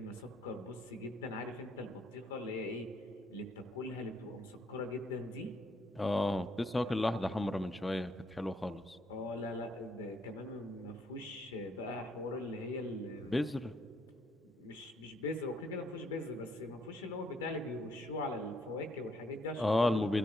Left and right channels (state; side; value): normal; both; correlation 0.71